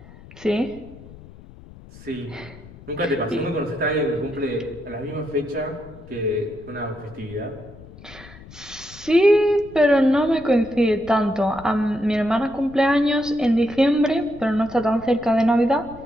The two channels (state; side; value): noise; left; rumble, 19 dB below the sound